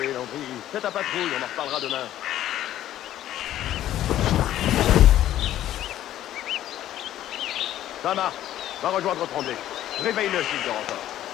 Landry. Fais ta patrouille, on en reparlera demain. Ça marche. Va rejoindre Tremblay. Réveille-le s'il dort encore.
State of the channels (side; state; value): right; quieter; 12.6 dB